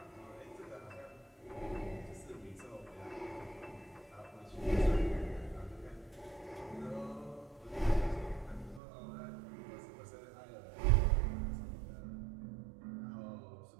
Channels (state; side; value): drops out; left; at 8.8 s